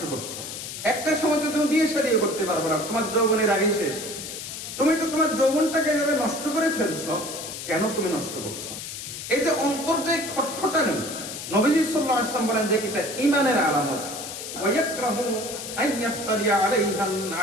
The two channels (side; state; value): left; noise; hiss, 8 dB below the sound